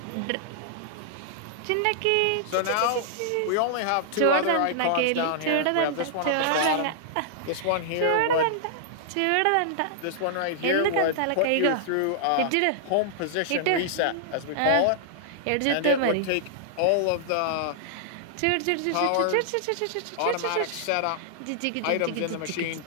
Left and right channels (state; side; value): different; both; correlation -0.01